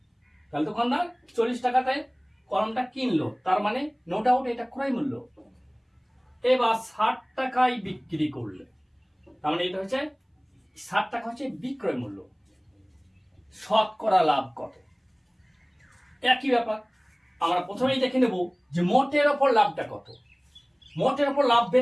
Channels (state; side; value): identical; both; correlation 1.00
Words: তাহলে দোকানদার 40 টাকাতে কলমটা কিনলো, তার মানে নো ডাউট এটা ক্রয় মূল্য। এবার 60 টাকায় বিক্রি করলে, তার মানে এটা হচ্ছে 60 টাকা হচ্ছে বিক্রয় মূল্য। শতকরা লাভ কত? একই ব্যাপার, আমরা প্রথমেই দেখে নেব যে মোটের ওপর লাভটা কত। মোটের ওপর লাভ